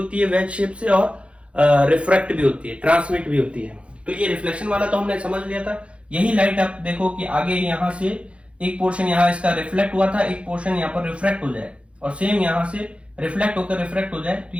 है वेज शेप से, और रिफ्रैक्ट भी होती है, ट्रांसमिट भी होती है। तो ये रिफ्लेक्शन वाला तो हमने समझ लिया था। यही लाइट आप देखो कि आगे यहाँ से एक पोर्शन यहाँ इसका रिफ्लेक्ट हुआ था, एक पोर्शन यहाँ पर रिफ्रैक्ट हो जाए, और सेम यहाँ से रिफ्लेक्ट होकर रिफ्रैक्ट हो जाए, तो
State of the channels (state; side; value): late; left; 0.060 ms